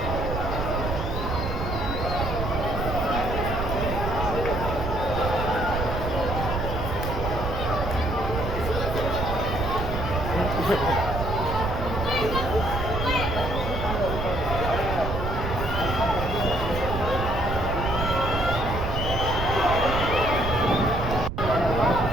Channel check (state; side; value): noise; right; rumble, 3 dB below the sound